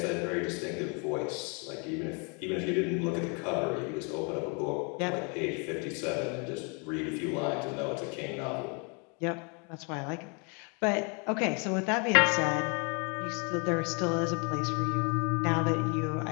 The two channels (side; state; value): right; quieter; 34.7 dB